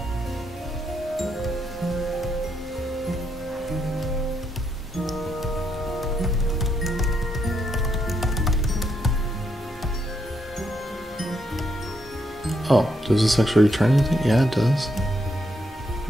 Oh, does this actually return anything? Yeah, it does.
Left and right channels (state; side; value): normal; both; correlation 0.78